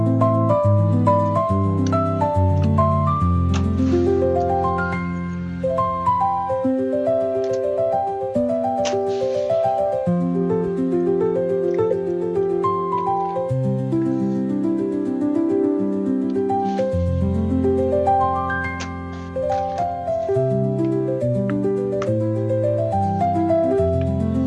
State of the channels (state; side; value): identical; both; correlation 1.00